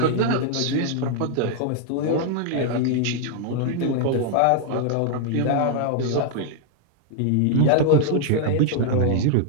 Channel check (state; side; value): different; both; correlation 0.00